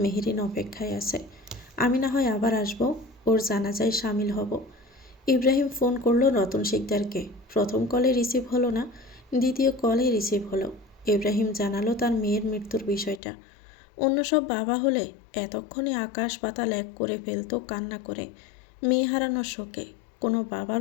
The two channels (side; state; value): right; drops out; at 13.2 s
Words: মেহেরিন অপেক্ষায় আছে। আমি না হয় আবার আসবো, ওর জানাজায় সামিল হব। ইব্রাহিম ফোন করলো রতন শিকদারকে। প্রথম কলে রিসিভ হলো না, দ্বিতীয় কলে রিসিভ হলো। ইব্রাহিম জানালো তার মেয়ের মৃত্যুর বিষয়টা। অন্য সব বাবা হলে এতক্ষণে আকাশ পাতাল এক করে ফেলতো কান্না করে। মেয়ে হারানোর শোকে কোনো